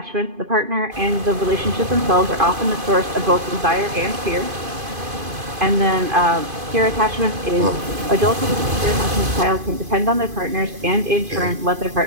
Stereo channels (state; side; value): late; left; 2.5 ms